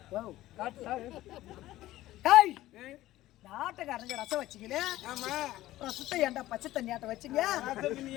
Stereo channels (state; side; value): quieter; right; 15.7 dB